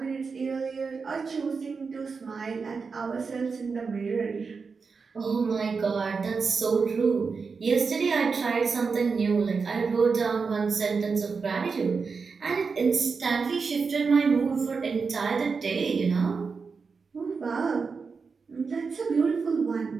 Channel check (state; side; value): quieter; left; 5.0 dB